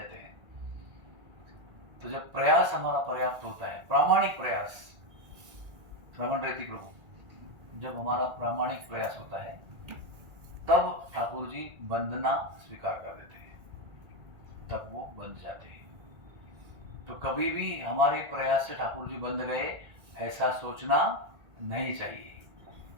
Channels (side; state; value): left; late; 1.8 ms